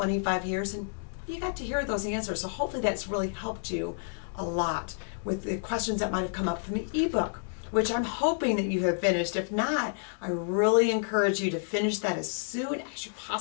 years, and you got to hear those answers. So hopefully that's really helped you a lot with the questions that might have come up from the ebook, which I'm hoping that you have finished. If not, I really encourage you to finish that as soon as you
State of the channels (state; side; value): silent; right; 58 dB below the other